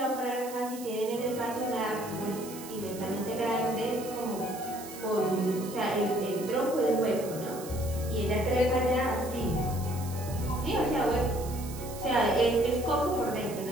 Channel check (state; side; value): noise; right; hiss, 14 dB below the sound